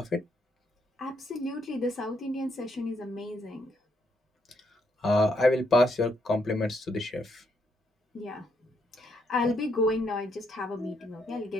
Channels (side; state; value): both; normal; correlation 0.75